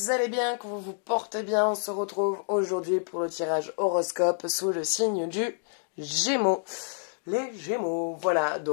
allez bien, que vous vous portez bien. On se retrouve aujourd'hui pour le tirage horoscope sous le signe du Gémeaux. Les Gémeaux, voilà.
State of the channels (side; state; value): right; silent; 59 dB below the other